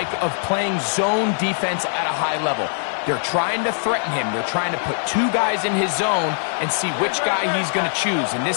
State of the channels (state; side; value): silent; right; 55 dB below the other